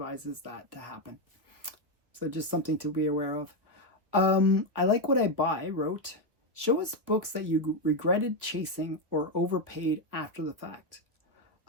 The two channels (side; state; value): left; late; 1.3 ms